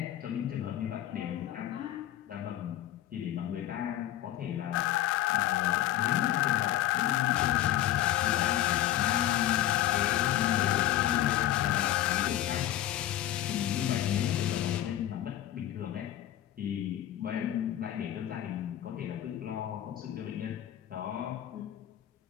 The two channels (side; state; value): right; quieter; 13.1 dB